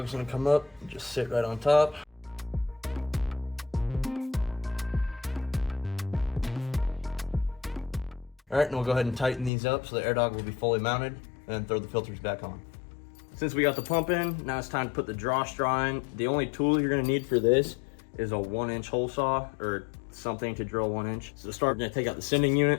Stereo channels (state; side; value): drops out; right; at 9.5 s